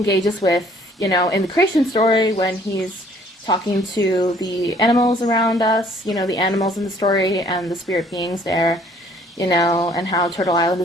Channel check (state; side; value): normal; both; correlation 0.59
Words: with, in the creation story when he's talking to the animals around us, the animals in the story and the spirit beings there, and how Turtle Island